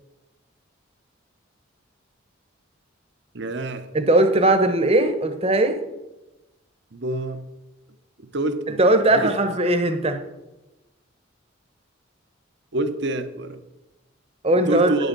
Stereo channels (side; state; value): both; normal; correlation 0.23